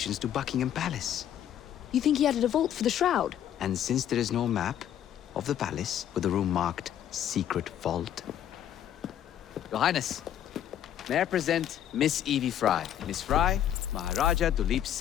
to Buckingham Palace. You think he added a vault for the shroud? And since there is no map of the palace with the room marked Secret Vault... Your Highness, may I present Miss Evie Fry. Miss Fry, Maharaja Duleep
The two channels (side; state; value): right; quieter; 10.4 dB